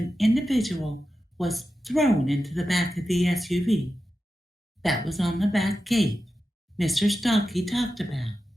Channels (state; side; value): normal; both; correlation 0.91